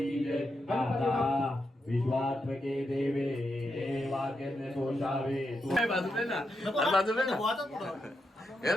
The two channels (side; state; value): both; normal; correlation 0.85